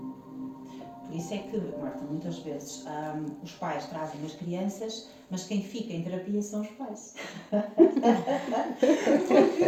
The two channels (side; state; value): both; identical; correlation 1.00